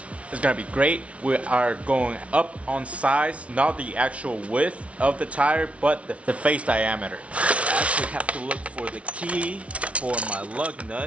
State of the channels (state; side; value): late; left; 0.063 ms